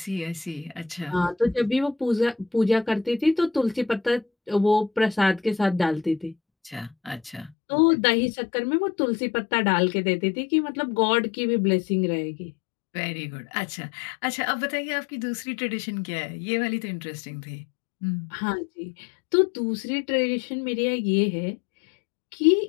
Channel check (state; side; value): drops out; right; at 7.6 s